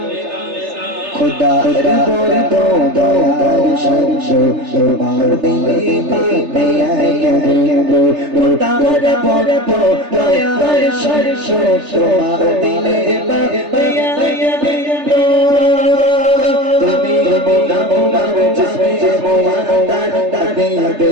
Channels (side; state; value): left; late; 3.3 ms